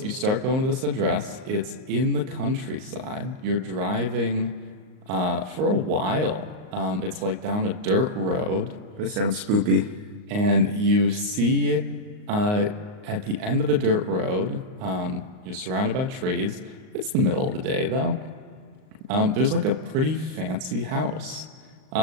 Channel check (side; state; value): left; late; 38 ms